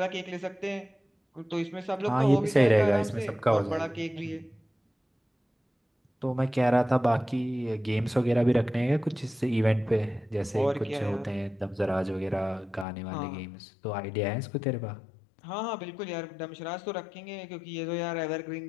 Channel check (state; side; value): drops out; right; at 12.9 s